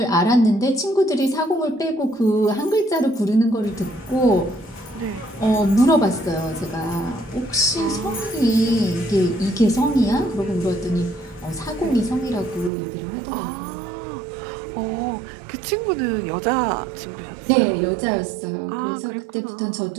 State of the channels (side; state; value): left; drops out; at 12.7 s